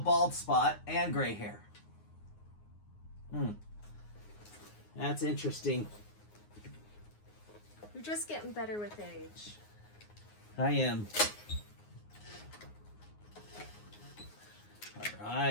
spot and gray hair. That's interesting. You're just getting better with age. I am. All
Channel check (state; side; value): late; right; 9.6 ms